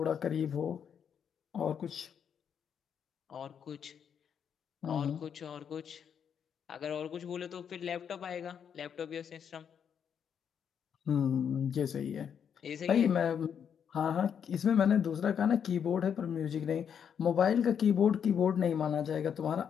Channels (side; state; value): right; quieter; 7.8 dB